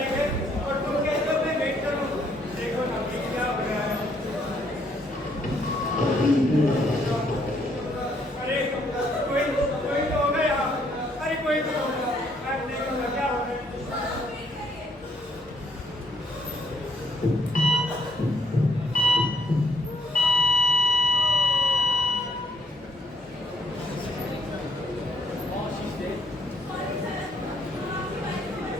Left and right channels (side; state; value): both; normal; correlation 0.68